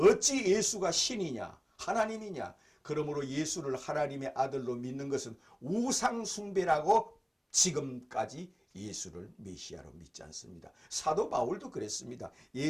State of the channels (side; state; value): both; identical; correlation 1.00